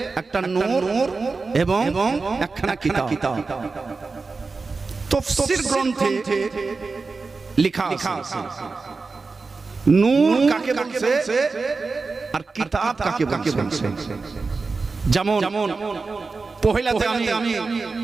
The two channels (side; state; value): left; quieter; 4.2 dB